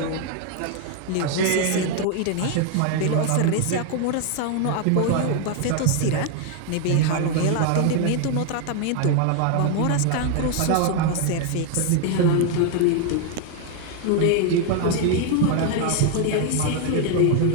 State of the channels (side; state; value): both; different; correlation 0.00